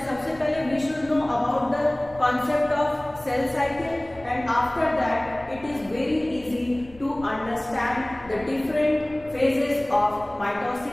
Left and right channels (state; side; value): noise; left; rumble, 22 dB below the sound